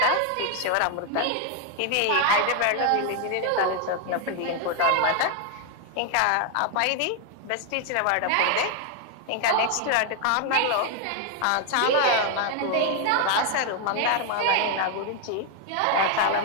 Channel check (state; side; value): different; both; correlation 0.00